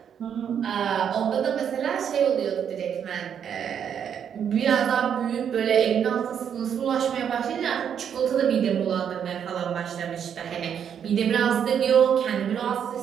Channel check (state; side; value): quieter; left; 8.3 dB